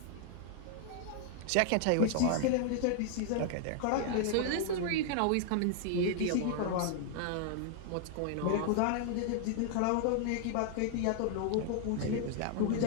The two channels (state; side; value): different; both; correlation 0.00